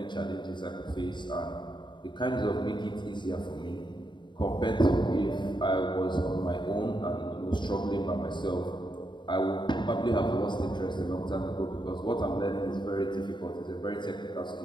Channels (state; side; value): late; right; 0.22 ms